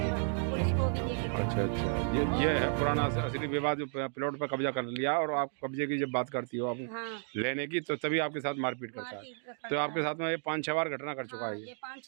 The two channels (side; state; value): left; silent; 56 dB below the other